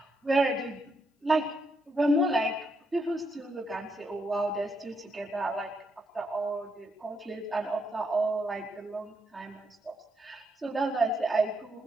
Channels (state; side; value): normal; both; correlation 0.79